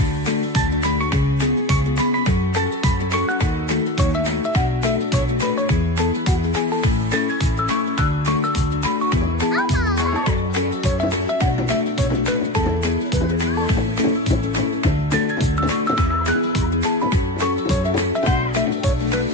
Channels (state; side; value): normal; both; correlation 0.31